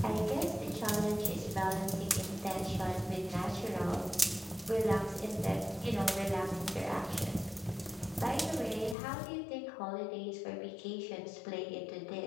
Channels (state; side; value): drops out; right; at 9.0 s